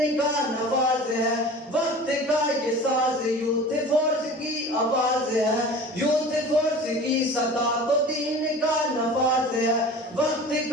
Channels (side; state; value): both; normal; correlation 0.39